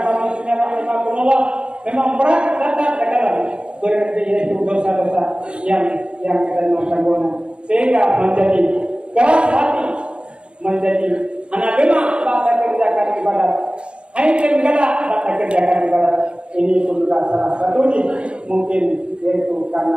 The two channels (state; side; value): late; left; 0.054 ms